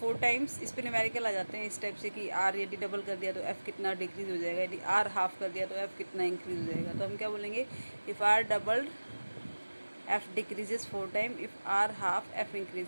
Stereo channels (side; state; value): both; inverted; correlation -1.00